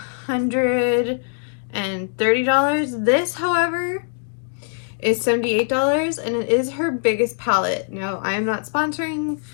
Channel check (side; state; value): right; silent; 64 dB below the other